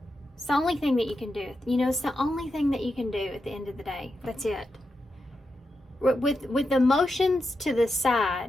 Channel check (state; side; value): normal; both; correlation 0.87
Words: It's the only thing that you can do. You know, it's the only thing that you can do at the end of the day. That's it. With emotions to the